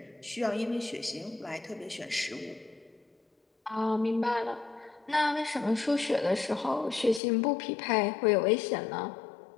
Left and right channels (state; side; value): drops out; right; at 7.2 s